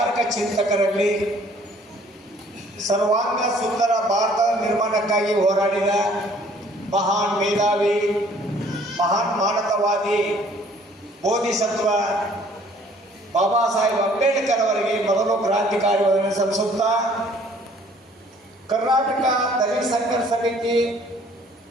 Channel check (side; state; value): both; normal; correlation 0.57